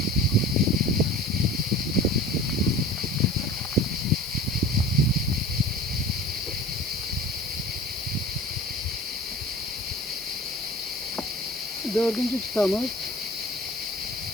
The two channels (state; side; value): normal; both; correlation 0.40